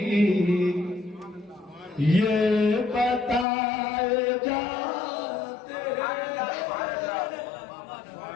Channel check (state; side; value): drops out; right; at 3.5 s